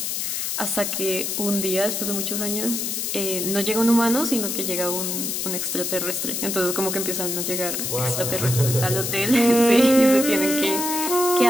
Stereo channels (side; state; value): left; noise; hiss, 2 dB below the sound